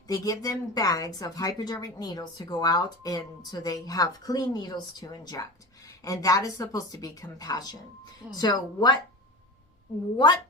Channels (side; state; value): both; normal; correlation 0.30